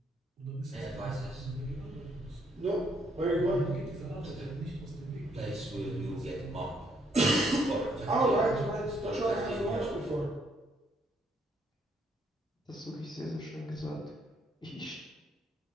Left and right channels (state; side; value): normal; both; correlation 0.70